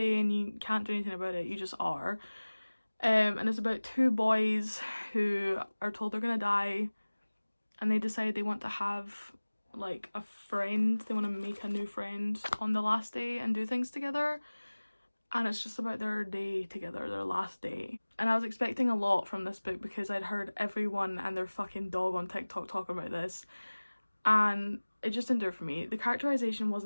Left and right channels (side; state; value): both; inverted; correlation -1.00